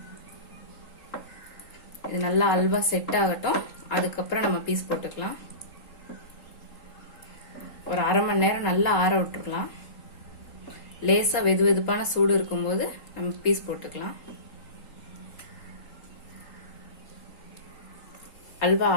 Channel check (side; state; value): right; late; 3.8 ms